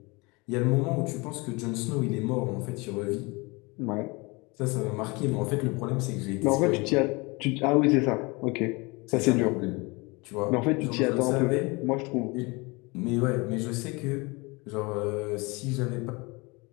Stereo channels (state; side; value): quieter; right; 26.4 dB